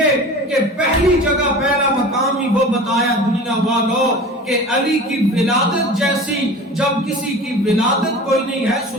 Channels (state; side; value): normal; both; correlation 0.37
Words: کہ پہلی جگہ پہلا مقام ہی وہ بتایا دنیا والوں کہ علی کی ولادت جیسی, جب کسی کی ولادت کوئی نہیں ہے